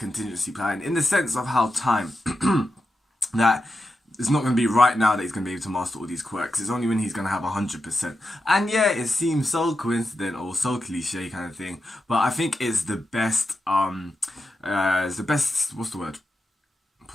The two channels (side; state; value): both; normal; correlation 0.89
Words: plan in the sense of how time that it's not going to be right now that he's going to be able to master all these quirks. It's only when he's going to have 100%. And yeah, it seems so coincident or so cliche kind of thing, but I think it's the best. It's the best. What's the word?